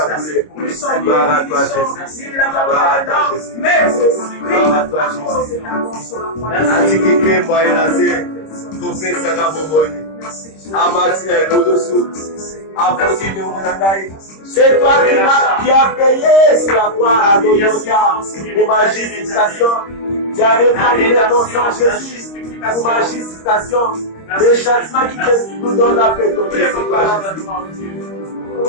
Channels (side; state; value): right; late; 26 ms